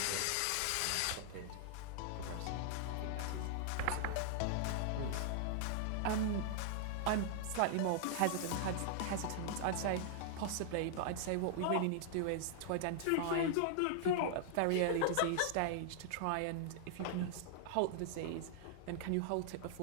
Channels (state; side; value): different; both; correlation -0.01